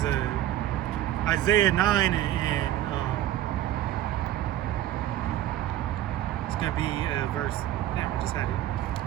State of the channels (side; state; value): left; quieter; 12.9 dB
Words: Isaiah 9 and it's gonna be verse. Damn, we just had it.